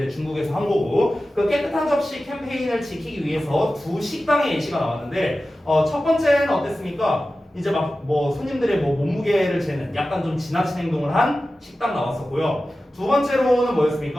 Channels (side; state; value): both; normal; correlation 0.94